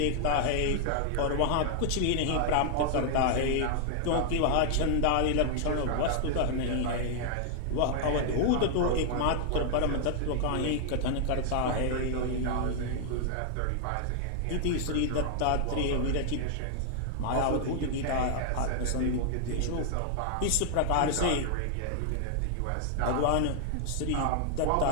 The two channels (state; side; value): different; both; correlation 0.00